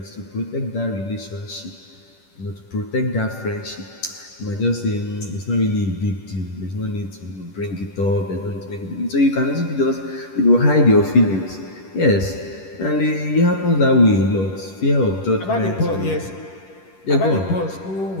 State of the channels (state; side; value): late; right; 10 ms